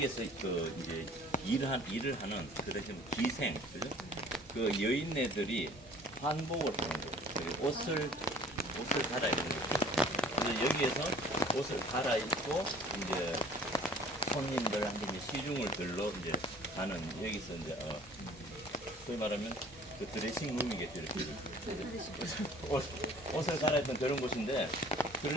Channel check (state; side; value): normal; both; correlation 0.51